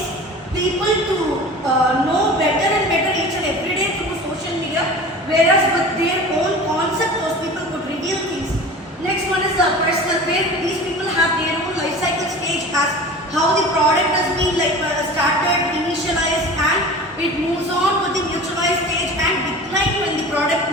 people to know better and better each and every day through social media, whereas with their own concept those people could reveal things. Next one is personal, where these people have their own life cycle stage as how the product has been started, initialized, and it moves on to the mutualized stage and decline when the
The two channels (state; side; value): normal; both; correlation 0.37